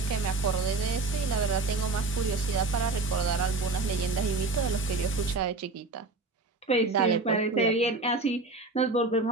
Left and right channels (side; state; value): left; quieter; 3.5 dB